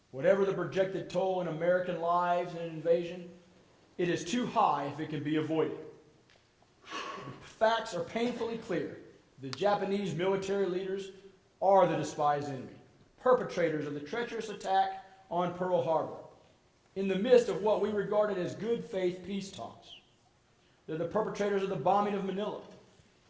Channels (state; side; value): identical; both; correlation 1.00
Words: Whatever the projected toll in American lives in an invasion, it is too high if it can be avoided. The facts are painfully clear. The Japanese military leaders are the despised enemy, perpetrators of the treacherous attack on Pearl Harbor, in the midst of what we regarded as good faith peace talks. They're the perpetrators of the bombing of Manila